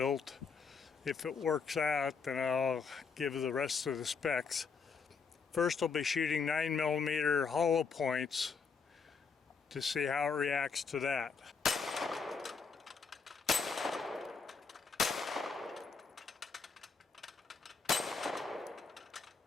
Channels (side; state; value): right; quieter; 5.3 dB